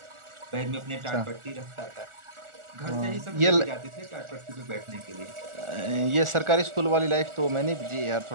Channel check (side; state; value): left; late; 1.4 ms